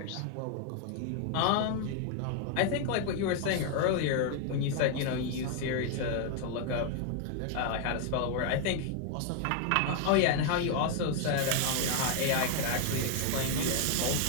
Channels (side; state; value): both; different; correlation 0.00